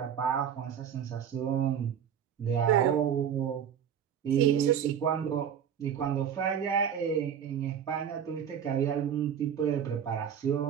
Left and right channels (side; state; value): left; quieter; 8.5 dB